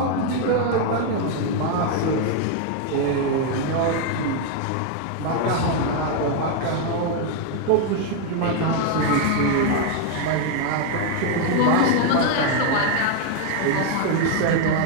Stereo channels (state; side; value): different; both; correlation 0.00